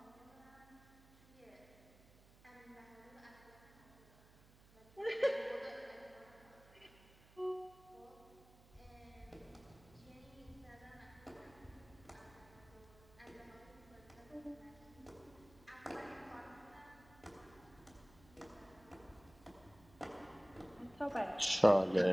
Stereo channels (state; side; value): noise; right; hum, 24 dB below the sound